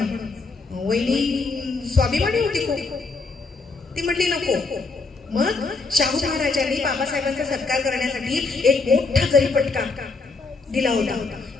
वहिनी स्वाभिमानी होती खूप, ती म्हटली नको. मग शाहू महाराजांनी बाबासाहेबांचा सत्कार करण्यासाठी एक मोठा जरीपटका दिला होता.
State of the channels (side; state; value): right; quieter; 3.9 dB